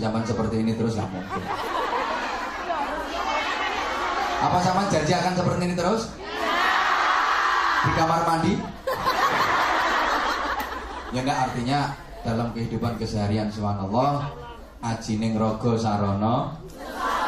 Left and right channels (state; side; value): identical; both; correlation 1.00